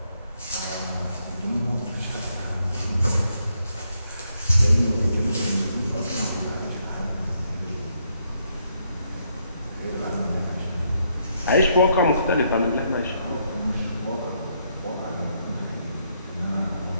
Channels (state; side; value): inverted; both; correlation -0.75